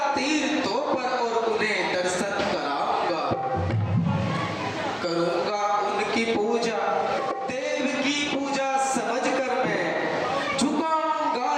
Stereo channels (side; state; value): both; identical; correlation 1.00